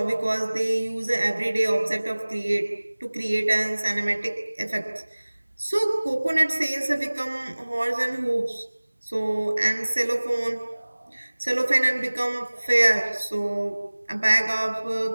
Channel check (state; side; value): inverted; both; correlation -1.00